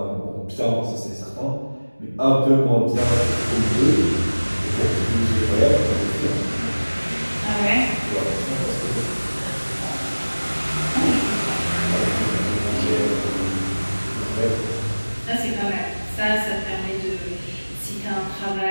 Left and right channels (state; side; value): inverted; both; correlation -1.00